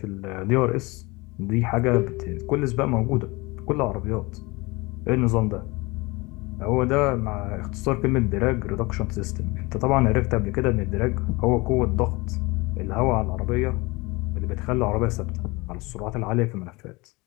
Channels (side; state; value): right; quieter; 24.3 dB